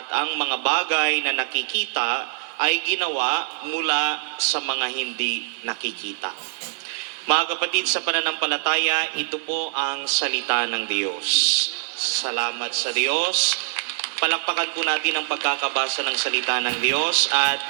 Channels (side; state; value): left; silent; digital silence